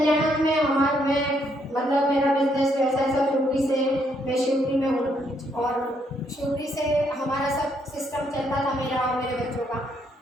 में मतलब मेरा बिजनेस व्यवसाय सब शिवपुरी से, मैं शिवपुरी में हूँ, और शिवपुरी से हमारा सब सिस्टम चलता था मेरा और मेरे बच्चों का।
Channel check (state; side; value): normal; both; correlation 0.73